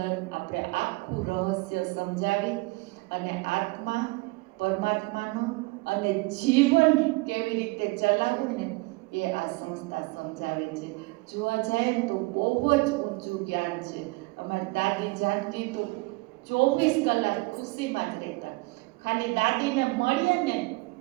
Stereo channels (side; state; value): left; quieter; 24.9 dB